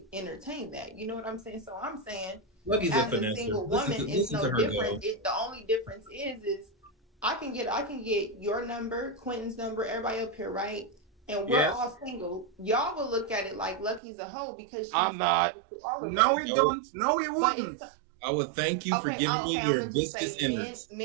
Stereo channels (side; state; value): left; drops out; at 14.0 s